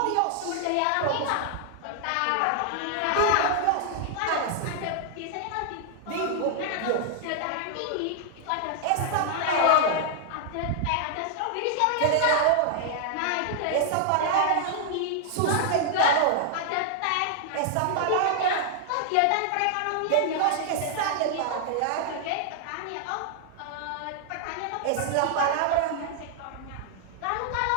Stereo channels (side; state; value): both; different; correlation -0.01